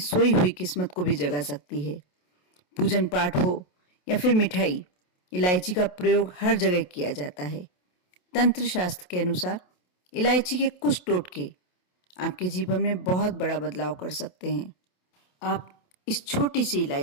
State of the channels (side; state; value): right; late; 28 ms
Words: हुई किस्मत को भी जगा सकती है। पूजन पाठ हो या फिर मिठाई, इलायची का प्रयोग हर जगह किया जाता है। तंत्र शास्त्र के अनुसार इलायची के कुछ टोटके आपके जीवन में बहुत बड़ा बदलाव कर सकते हैं। आप इस छोटी सी